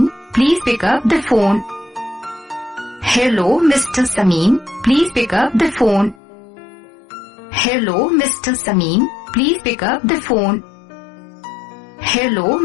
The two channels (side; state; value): right; drops out; at 6.2 s